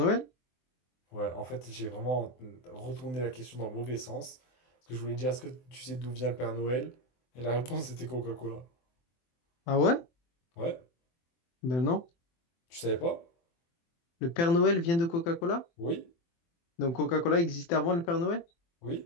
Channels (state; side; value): late; right; 24 ms